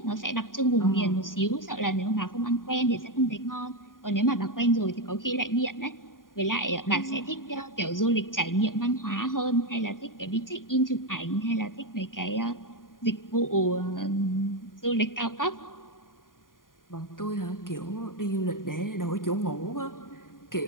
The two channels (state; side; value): late; right; 0.90 ms